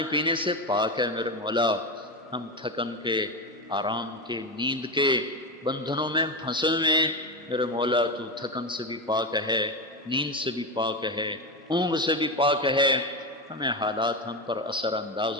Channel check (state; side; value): normal; both; correlation 0.16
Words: پینے سے پاک ہے میرے مولا، ہم تھکن کے، آرام کے، نیند کے بندھنوں میں پھنسے ہوئے میرے مولا، تو تھکن سے بھی پاک ہے، نیند سے بھی پاک ہے، اونگ سے بھی پاک ہے، ہمیں حالات ہم پر اثر انداز